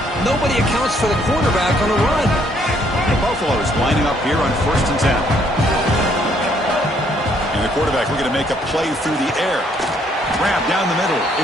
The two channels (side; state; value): both; normal; correlation 0.67